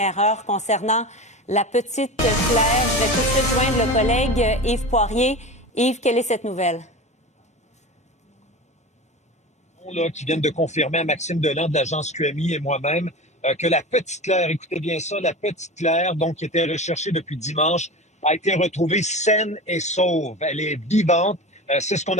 heure concernant la petite Claire. Je vais tout de suite joindre le collègue Yves Poirier. Yves, quelle est cette nouvelle? Là, qui viennent de confirmer à Maxime Delan de l'agence QMI et moi-même que la petite Claire, écoutez bien ça, la petite Claire, donc qui était recherchée depuis dimanche, a été retrouvée saine et sauve. Elle est vivante. C'est ce qu'on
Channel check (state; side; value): normal; both; correlation 0.29